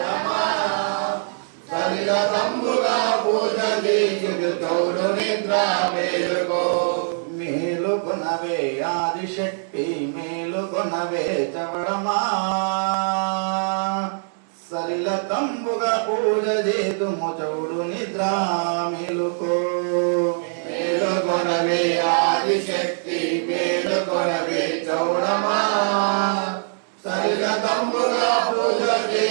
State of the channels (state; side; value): silent; left; digital silence